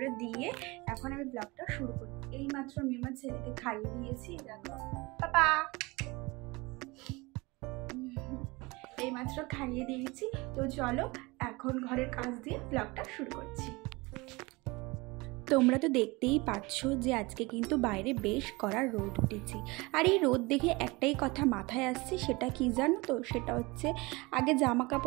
দিয়ে এখন আমি ব্লগটা শুরু করি। এই মাত্র আমি আমার ছেলেকে খাইয়ে দিয়েছি, দেখো পাপা, এইমাত্র খাইয়ে দিয়েছি। তো চলো এখন ঘরের কাজ দিয়ে ব্লগটা শুরু করছি। তোমরা তো দেখতেই পাচ্ছ যে আজকে কিন্তু বাইরে বেশ কড়া রোদ উঠেছে। আর এই রোদ দেখে একটাই কথা মাথায় আসছে, সেটা কি জানো তো? সেটা হচ্ছে আগে জামা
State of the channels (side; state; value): left; quieter; 24.0 dB